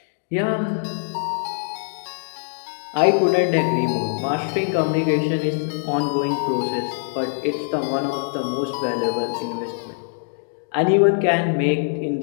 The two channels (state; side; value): silent; right; digital silence